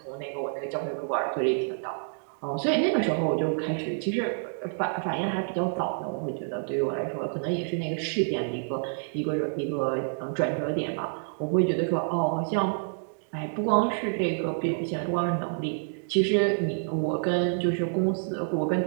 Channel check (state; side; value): silent; left; digital silence